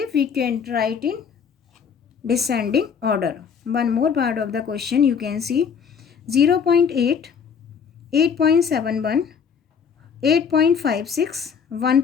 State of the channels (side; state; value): right; quieter; 6.7 dB